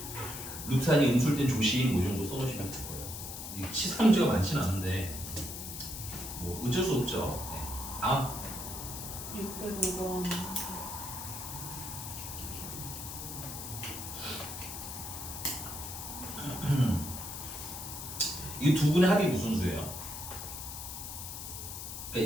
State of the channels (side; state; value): left; noise; hiss, 8 dB below the sound